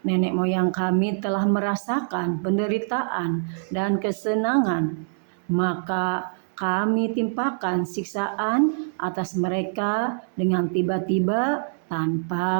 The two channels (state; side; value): silent; left; digital silence